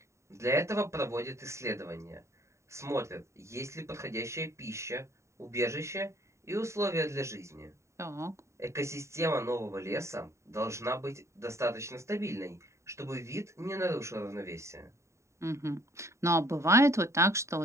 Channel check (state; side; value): late; left; 0.14 ms